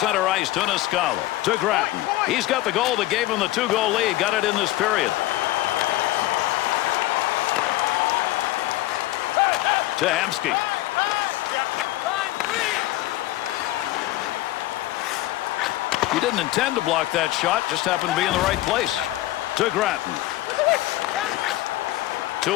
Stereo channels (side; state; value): right; quieter; 16.8 dB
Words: ice to Niscala. To Grattan. He's got the goal that gave him the 2-goal lead. Got it in this period. To Hemsky. He didn't intend to block that shot. Just happened to be in the right place. To Grattan. To